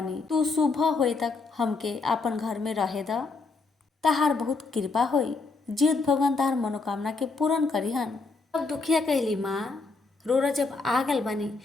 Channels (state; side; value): quieter; right; 4.0 dB